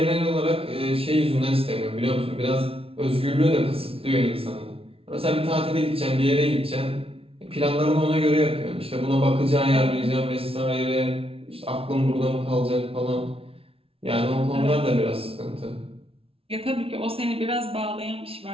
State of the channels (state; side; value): late; left; 0.27 ms